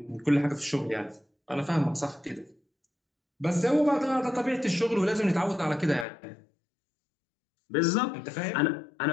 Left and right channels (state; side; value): drops out; right; at 6.1 s